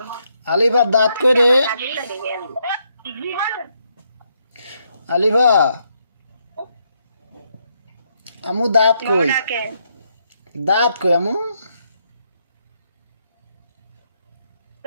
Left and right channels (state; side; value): inverted; both; correlation -0.77